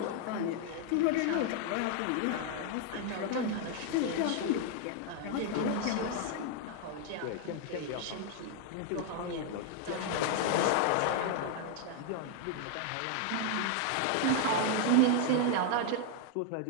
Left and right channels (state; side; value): different; both; correlation 0.00